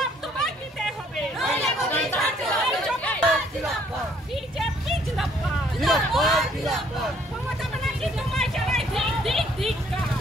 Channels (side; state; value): both; normal; correlation 0.63